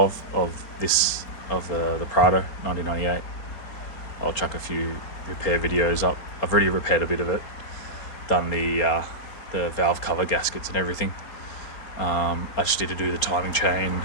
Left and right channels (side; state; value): right; late; 4.2 ms